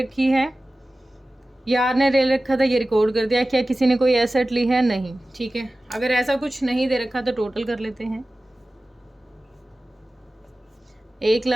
है, यार ने ले रखा था, ये रिकॉर्ड कर दिया। क्या किसी ने कोई एसेट ली है, नहीं। ठीक है, अगर ऐसा कुछ नहीं दे रखा तो टोटल कर लेते हैं।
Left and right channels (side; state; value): both; normal; correlation 0.96